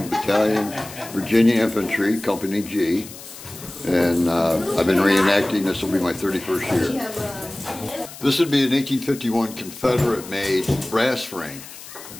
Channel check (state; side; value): noise; left; hiss, 15 dB below the sound